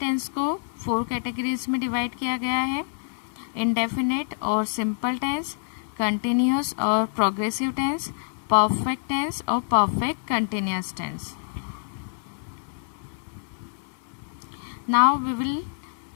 को 4 कैटेगरीज में डिवाइड किया गया है. इंडेफिनेट और सिंपल टेंस, कंटिन्यूस और प्रोग्रेसिव टेंस, परफेक्ट टेंस और perfect continuous tense. Now we will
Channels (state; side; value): silent; right; digital silence